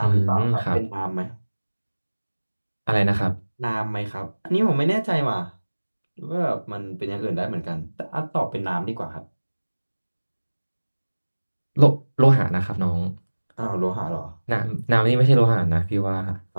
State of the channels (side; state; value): both; inverted; correlation -1.00